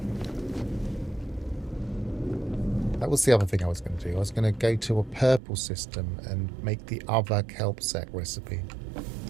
That was the other thing I was going to do. I was going to go to a purple system and make the other kelp sack recipe.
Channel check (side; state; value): left; drops out; at 5.4 s